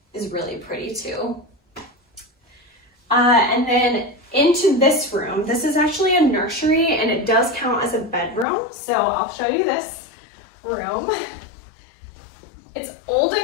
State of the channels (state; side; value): drops out; right; at 8.5 s